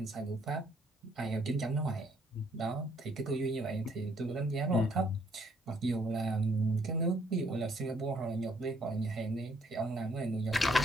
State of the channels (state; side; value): normal; both; correlation 0.67